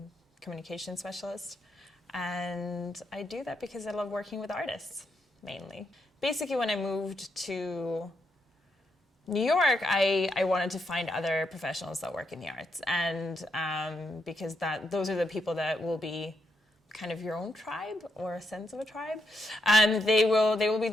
communication specialist. And I do that because I love working with artists, mainly. Basically, when I moved to New York, I wanted to find other professionals that work in the arts, and because those are the people that will be kind of your own tribe, or a sense of a tribe. They will be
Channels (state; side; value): normal; both; correlation 0.81